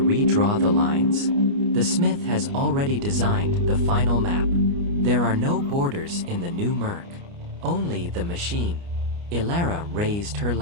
redraw the lines? The smith has already designed the final map. There are no borders in the new Murk. Only the machine. Elara raised her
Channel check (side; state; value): left; late; 29 ms